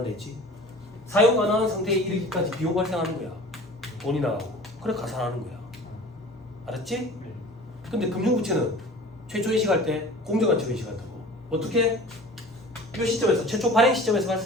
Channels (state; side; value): normal; both; correlation 0.42